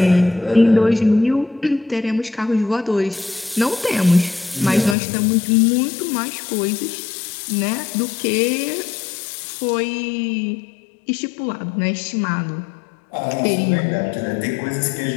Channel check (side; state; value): right; drops out; at 5.0 s